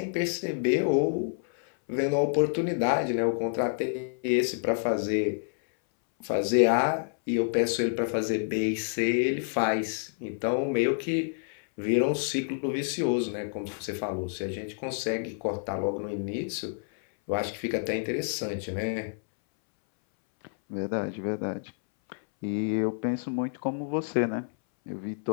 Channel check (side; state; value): right; silent; 59 dB below the other